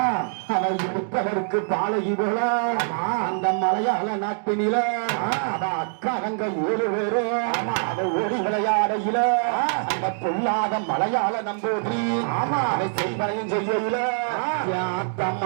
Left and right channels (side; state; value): left; silent; digital silence